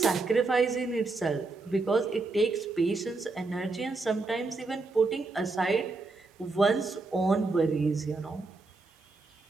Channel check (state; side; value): quieter; left; 3.6 dB